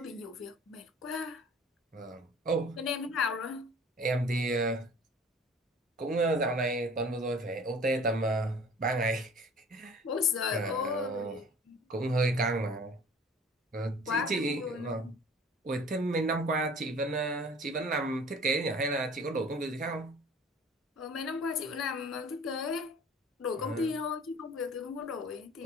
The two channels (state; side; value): normal; both; correlation 0.47